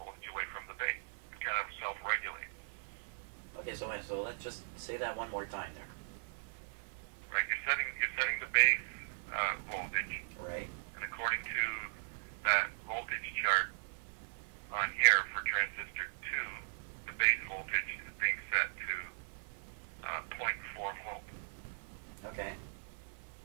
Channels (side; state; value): left; silent; digital silence